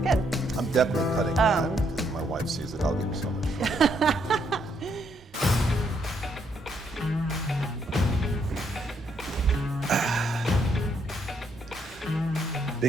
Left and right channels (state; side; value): normal; both; correlation 0.74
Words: I'm definitely cutting that because if my wife sees it, I'll give her so much trouble.